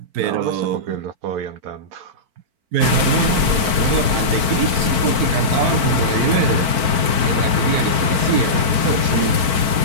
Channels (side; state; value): left; late; 4.5 ms